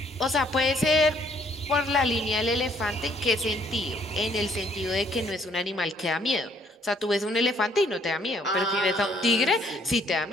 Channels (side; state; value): both; normal; correlation 0.64